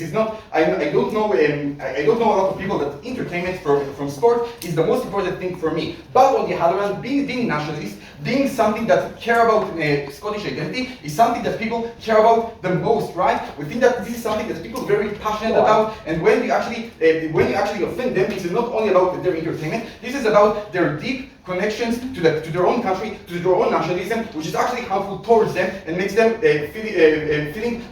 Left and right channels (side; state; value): both; identical; correlation 1.00